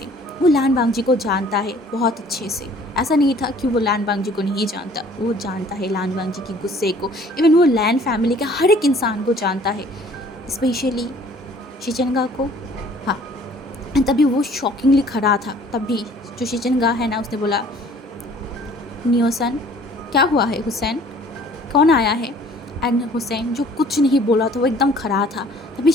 वो लान वांग जी को जानता है बहुत अच्छे से. ऐसा नहीं था कि वो लान वांग जी को नहीं जानता, वो जानता है लान वांग जी की गुस्से को. इवन वो लैन फैमिली के हर एक इंसान को जानता है, स्पेशली शिचनगा को. हाँ. तभी वो शॉकिंगली खड़ा था. तभी जो शिचनगा है ना, उसने बोला, नियोसन क्या हुआ है, हुसैन कौन आया है. एंड हुसैन जो कुछ नहीं बोला था, वो एकदम खड़ा था. तभी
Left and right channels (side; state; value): both; normal; correlation 0.54